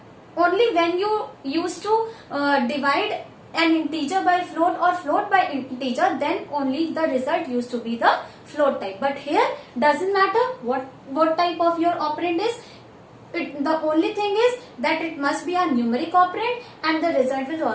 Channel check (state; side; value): identical; both; correlation 1.00